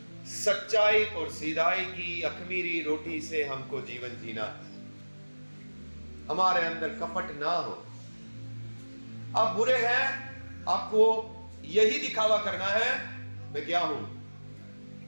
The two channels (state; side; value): inverted; both; correlation -1.00